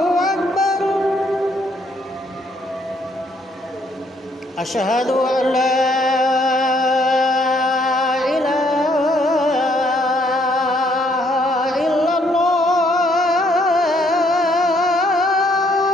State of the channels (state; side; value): normal; both; correlation 0.68